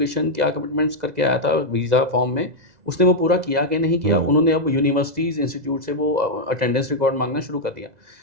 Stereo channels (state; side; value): late; left; 2.0 ms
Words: क्या कमिटमेंट्स करके आया था वीज़ा फॉर्म में, उसने वो पूरा किया कि नहीं किया। उन्होंने अब यूनिवर्सिटीज़, इंस्टीट्यूट से वो अटेंडेंस रिकॉर्ड मांगना शुरू कर दिया।